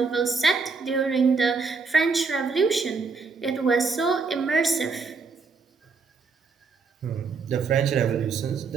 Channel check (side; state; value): left; quieter; 4.7 dB